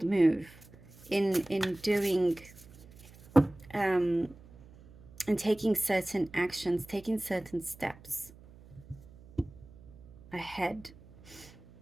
move in doing and taking certain actions, taking certain steps ahead,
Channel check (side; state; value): right; noise; hum, 22 dB below the sound